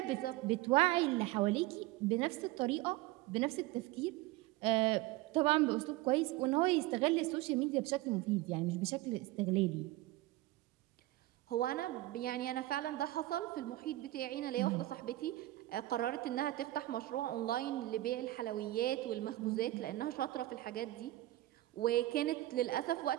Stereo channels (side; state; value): left; quieter; 17.5 dB